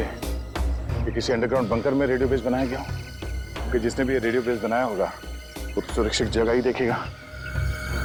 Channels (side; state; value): both; identical; correlation 1.00